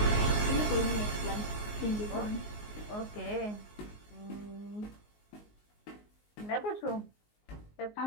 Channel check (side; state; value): right; late; 19 ms